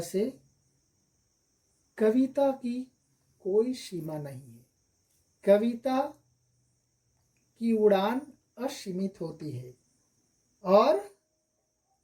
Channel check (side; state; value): both; identical; correlation 1.00